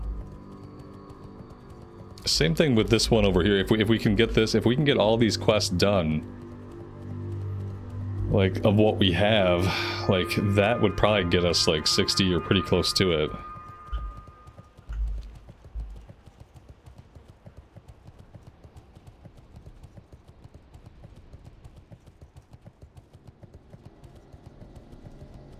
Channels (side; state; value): both; identical; correlation 1.00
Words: Same thing with this one over here. If we can get this, if we can get all these quests done, like, of what we have, like, that would probably get us, like, 60 or pretty close to it.